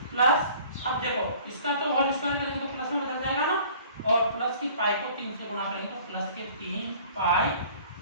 प्लस अब देखो इसका तो होल स्क्वायर करेंगे तो प्लस में बदल जाएगा ना, और प्लस की पाई को 3 से गुना करेंगे तो प्लस के 3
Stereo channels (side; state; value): both; inverted; correlation -0.50